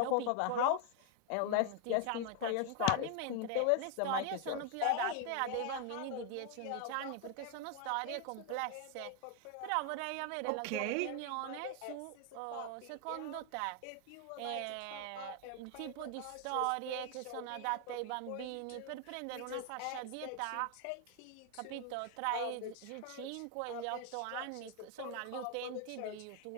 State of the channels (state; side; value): different; both; correlation 0.00